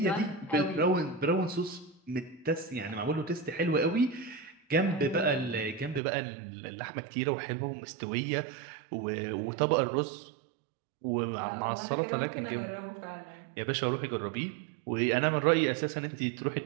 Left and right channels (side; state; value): left; drops out; at 6.0 s